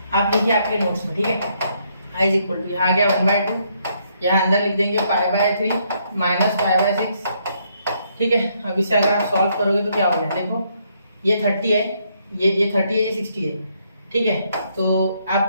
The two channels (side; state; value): both; inverted; correlation -0.72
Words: आप देखिए आपके नोट्स में, ठीक है। i इज इक्वल टू, यहाँ आ गया 1/2, यहाँ अंदर लिख देंगे π/3 माइनस π/6, ठीक है। अब इसे अगर आप सॉल्व करोगे तो क्या हो जाए? देखो ये 30 है, ये 30 है, ये 60 है, ठीक है। तो